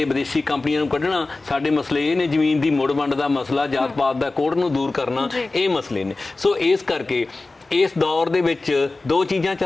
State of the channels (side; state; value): right; quieter; 3.3 dB